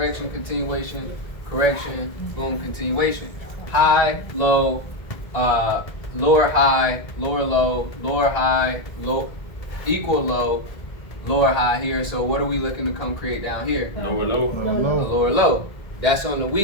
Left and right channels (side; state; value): right; late; 1.8 ms